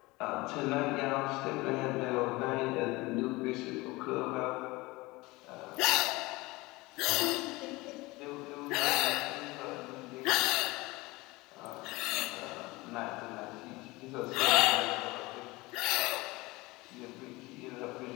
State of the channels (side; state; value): right; quieter; 21.9 dB